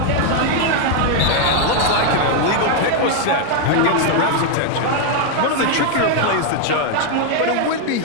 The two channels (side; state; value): both; different; correlation 0.00